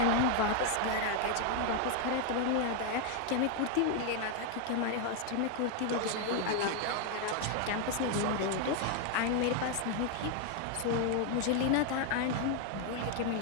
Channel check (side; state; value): both; different; correlation 0.01